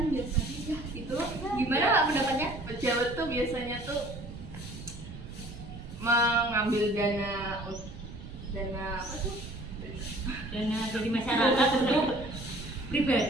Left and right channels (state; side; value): noise; right; rumble, 12 dB below the sound